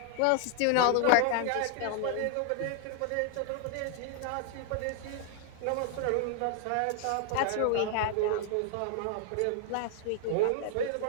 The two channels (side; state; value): both; different; correlation 0.00